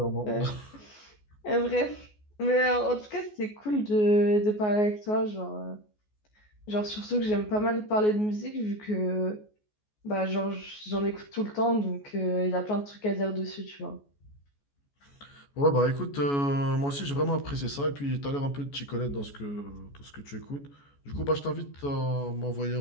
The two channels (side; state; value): right; late; 14 ms